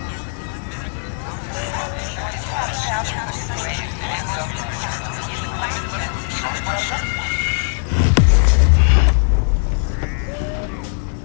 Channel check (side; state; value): right; silent; digital silence